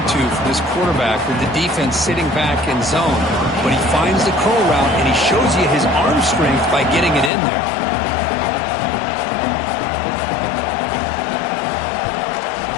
for this quarterback with the defense sitting back in zone. But he finds the curl route, and he shows you his arm strength by getting it in there.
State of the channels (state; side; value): drops out; right; at 7.3 s